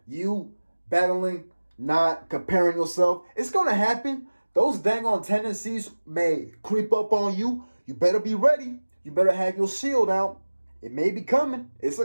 You battling, not comparing yourself. It's going to happen. Those dang on tendencies may creep up on you. You better be ready. You better have your shield out. It may be coming. It's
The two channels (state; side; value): inverted; both; correlation -1.00